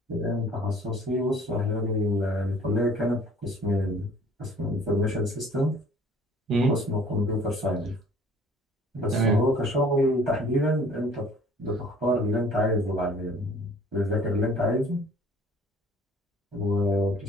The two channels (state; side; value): normal; both; correlation 0.52